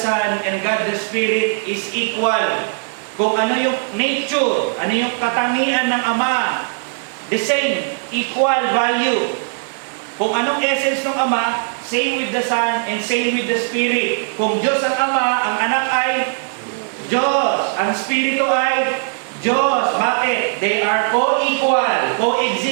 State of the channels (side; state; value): left; silent; 60 dB below the other